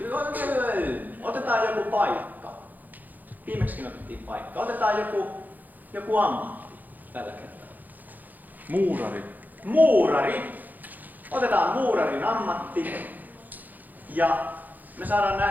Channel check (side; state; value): left; late; 0.084 ms